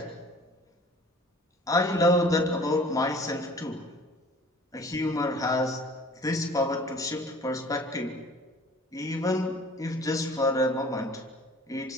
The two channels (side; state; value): both; normal; correlation 0.48